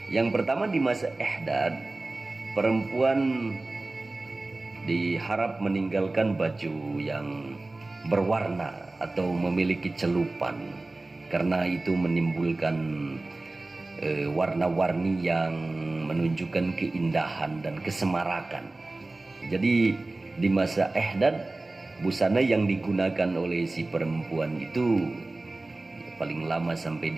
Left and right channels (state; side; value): quieter; left; 3.0 dB